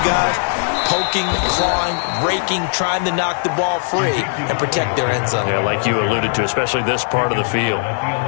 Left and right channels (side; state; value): right; silent; digital silence